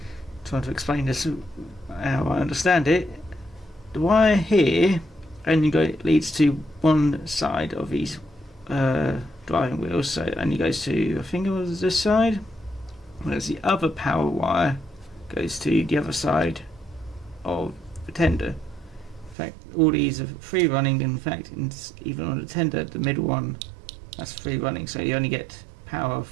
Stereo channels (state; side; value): drops out; left; at 19.4 s